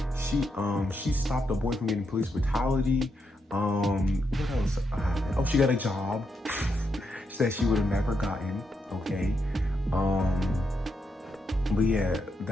She stopped the boy from getting police brutality. What else? Oh, she got a job. She said she would have never gotten. Okay. But yeah,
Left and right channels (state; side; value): normal; both; correlation 0.82